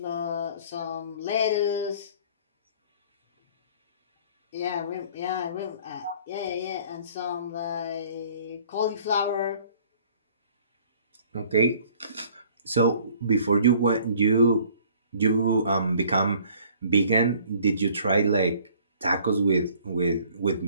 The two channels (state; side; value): inverted; both; correlation -0.55